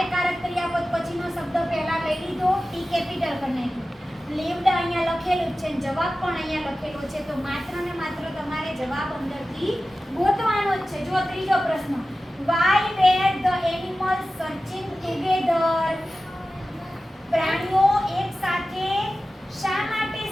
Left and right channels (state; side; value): normal; both; correlation 0.95